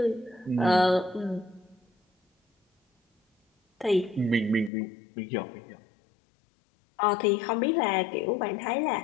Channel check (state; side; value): drops out; right; at 4.7 s